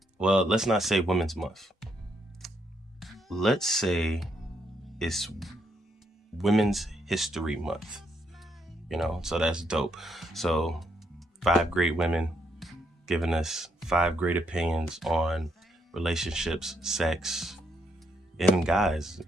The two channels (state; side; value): normal; both; correlation 0.76